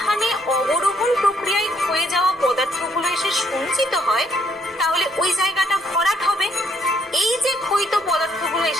অবরোহণ প্রক্রিয়ায় ক্ষয়ে যাওয়া পদার্থগুলো এসে সঞ্চিত হয় তাহলে ওই জায়গাটা ভরাট হবে। এই যে ক্ষয়িত পদার্থগুলো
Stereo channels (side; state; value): both; normal; correlation 0.69